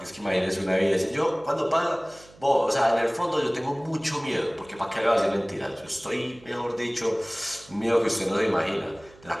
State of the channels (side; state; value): right; noise; hum, 24 dB below the sound